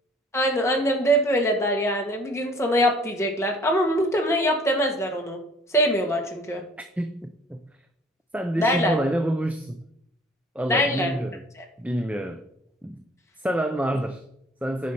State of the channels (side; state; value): both; normal; correlation 0.53